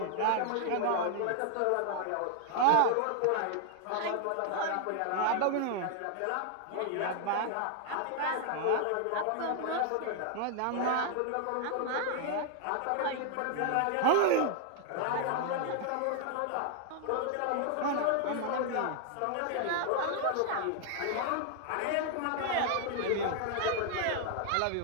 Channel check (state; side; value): different; both; correlation 0.00